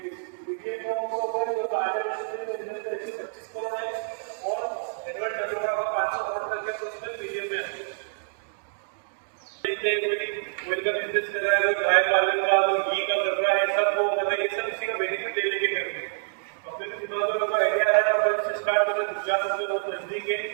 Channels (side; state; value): left; silent; digital silence